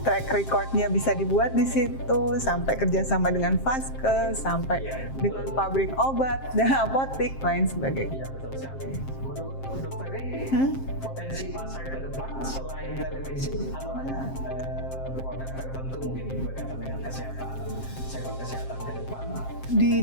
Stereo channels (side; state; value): right; late; 7.5 ms